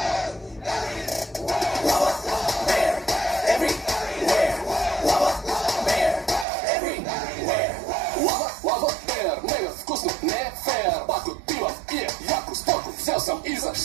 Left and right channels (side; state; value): left; drops out; at 6.5 s